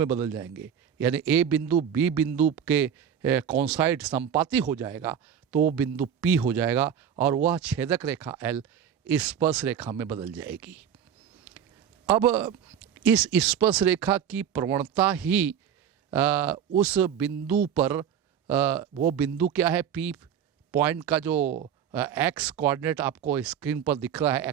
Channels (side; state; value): left; quieter; 8.6 dB